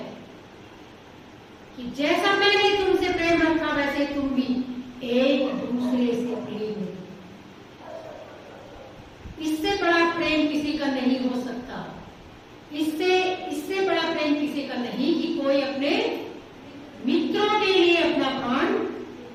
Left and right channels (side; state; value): both; identical; correlation 1.00